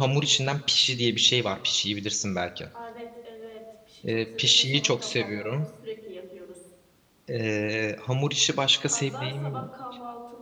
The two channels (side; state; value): both; identical; correlation 1.00